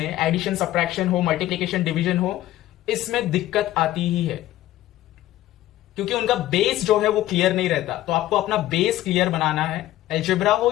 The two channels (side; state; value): right; quieter; 14.6 dB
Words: एडिशन सब्ट्रैक्शन हो, मल्टीप्लिकेशन डिवीजन हो, इसमें दिक्कत आती ही है, क्योंकि उनका बेस जो है वो क्लियर नहीं रहता। तो आपको अपना बेस क्लियर बनाना है। अलजेब्रा हो